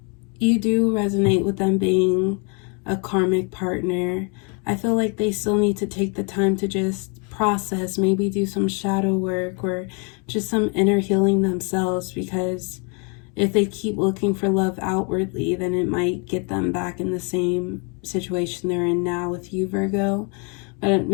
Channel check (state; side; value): quieter; right; 35.2 dB